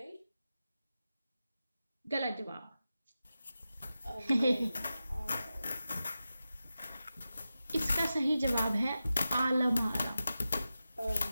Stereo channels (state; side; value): inverted; both; correlation -0.92